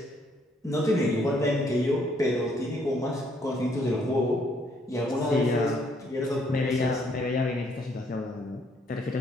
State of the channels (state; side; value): normal; both; correlation 0.68